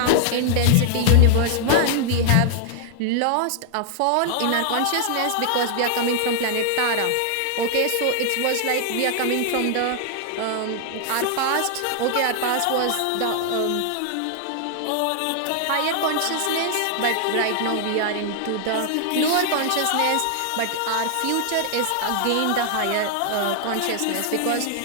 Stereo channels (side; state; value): both; different; correlation 0.00